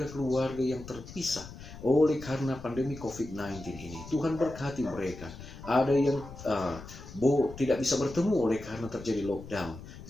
yang terpisah oleh karena pandemi COVID-19 ini. Tuhan berkati mereka. Ada yang tidak bisa bertemu oleh karena terjadi lockdown.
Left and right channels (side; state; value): left; noise; rumble, 14 dB below the sound